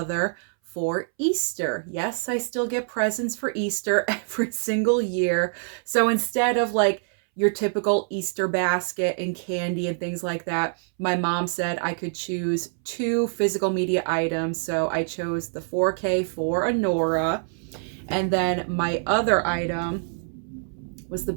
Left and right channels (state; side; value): silent; left; 62 dB below the other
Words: for Easter. Yes, I still get presents for Easter every single year. So instead of like your typical Easter basket and candy and things like that, my mom said I could choose two physical media items. So I chose the 4K for Anora. And then my other item was the